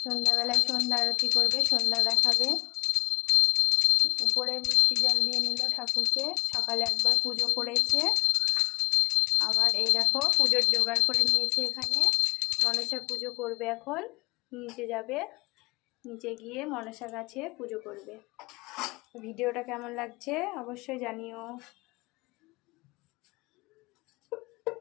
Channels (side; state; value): right; quieter; 22.5 dB